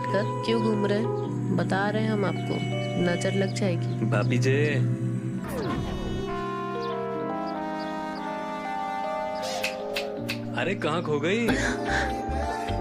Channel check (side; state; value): both; identical; correlation 1.00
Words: कर क्यों घूम रहे हैं? बता रहे हैं हम आपको, नजर लग जाएगी। भाभी जी अरे कहाँ खो गई?